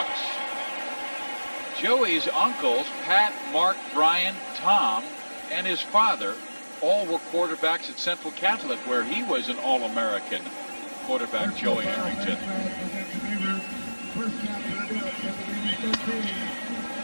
Joey's uncles, Pat, Mark, Brian, Tom, and his father, all were quarterbacks at Central Catholic, where he was an All-American quarterback, Joey Harrington.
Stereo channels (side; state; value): both; inverted; correlation -1.00